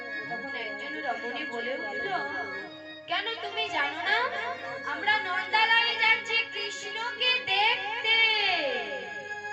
তখন একজন রমণী বলে উঠল, কেন তুমি জানো না আমরা নন্দালয়ে যাচ্ছি কৃষ্ণকে দেখতে।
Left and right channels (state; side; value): identical; both; correlation 1.00